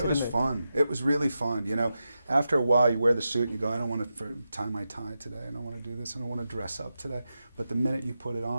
It was fun. It was really fun. You know, after a while, you wear the suit and you go, I don't want to tie my tie today. I don't want to do this. I don't want to dress up today. But the minute you put it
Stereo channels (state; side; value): inverted; both; correlation -0.90